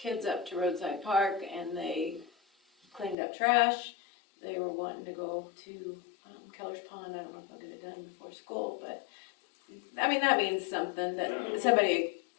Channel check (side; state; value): right; drops out; at 3.2 s